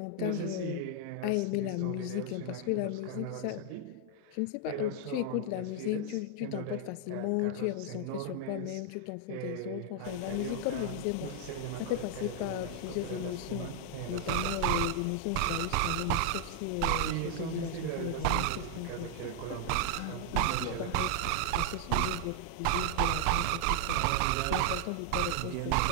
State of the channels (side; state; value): both; different; correlation 0.00